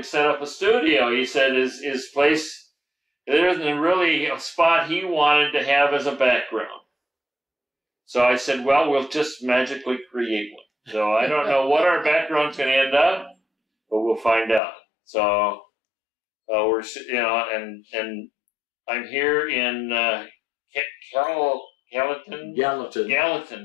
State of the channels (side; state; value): right; drops out; at 14.6 s